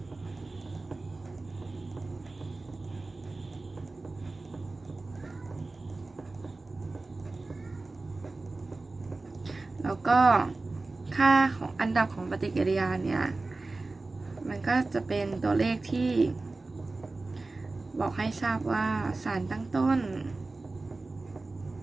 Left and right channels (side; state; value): left; quieter; 3.4 dB